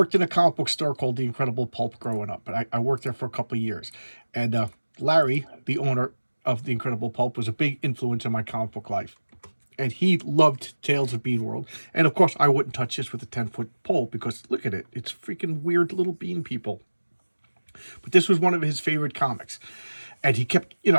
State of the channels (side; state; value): both; inverted; correlation -1.00